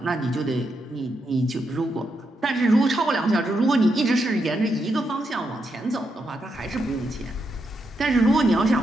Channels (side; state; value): both; normal; correlation 0.82